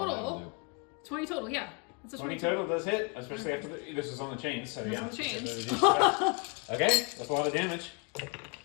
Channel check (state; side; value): quieter; right; 32.9 dB